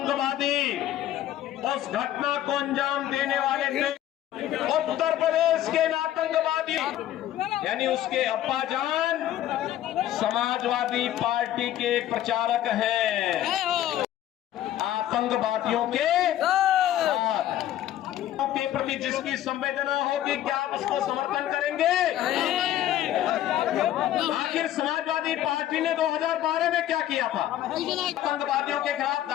उस घटना को अंजाम देने वाले थे, उत्तर प्रदेश के आतंकवादी, यानी उसके अब्बाजान समाजवादी पार्टी के प्रचारक हैं। आतंकवादियों के प्रति जिसकी संवेदना होगी, क्या आप उसको समर्थन करेंगे? आखिर समाजवादी पार्टी ने 2012 में क्या किया था? आतंकवादियों के खिलाफ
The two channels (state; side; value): quieter; right; 12.5 dB